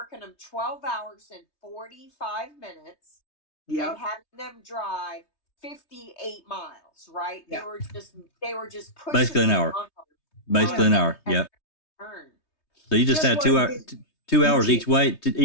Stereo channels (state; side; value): late; right; 3.2 ms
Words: them 12 hours and 45 minutes and having them drive 58 miles, right? They were just pushing basically an hour. Basically an hour. Yeah. So you just had 2 hours each way.